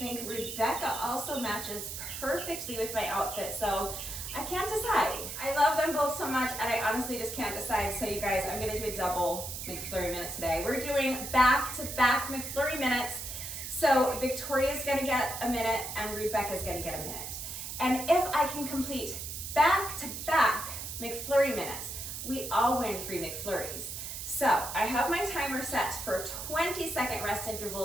Rebecca also matches perfectly with my outfit, so I can't decide. I love them both so much, and I honestly just can't decide. So you guys, I'm gonna do a double McFlurry minute today. We're doing back-to-back McFlurry minutes. So Victoria's gonna get a minute, and Rebecca's gonna get a minute. And if I can complete back-to-back McFlurry minutes, we all win free McFlurries. So I have my timer set for 20-second rest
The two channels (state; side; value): noise; right; hiss, 7 dB below the sound